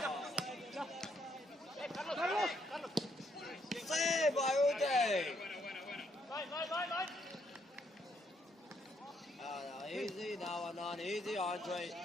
Save by Uday. Easy now and on. Easy, Andre.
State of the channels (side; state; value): both; normal; correlation 0.73